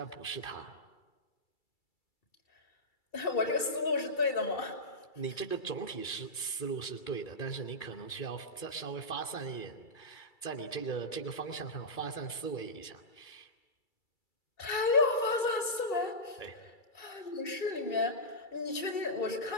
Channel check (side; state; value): right; late; 2.3 ms